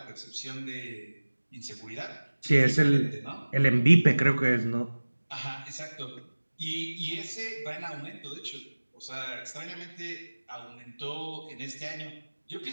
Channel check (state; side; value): inverted; both; correlation -1.00